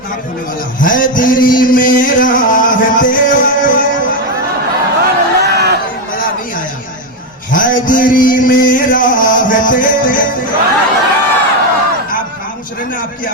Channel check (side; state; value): both; normal; correlation 0.08